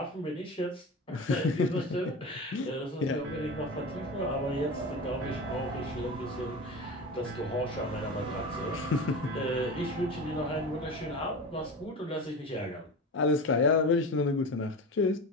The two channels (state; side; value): normal; both; correlation 0.29